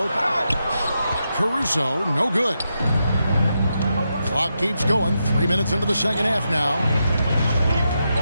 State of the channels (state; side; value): inverted; both; correlation -0.85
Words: Caruso, no good. Clock keeps going. 3 minutes into the second half now.